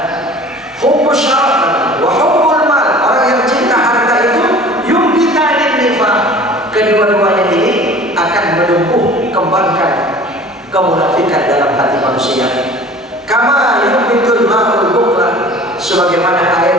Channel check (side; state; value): both; normal; correlation 0.45